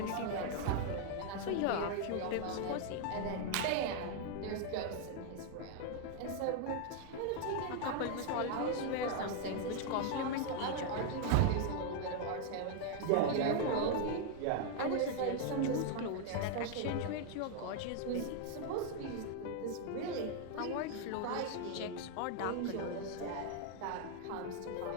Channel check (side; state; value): both; different; correlation 0.00